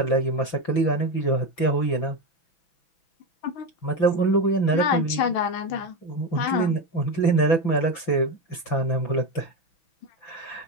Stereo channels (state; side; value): late; right; 6.0 ms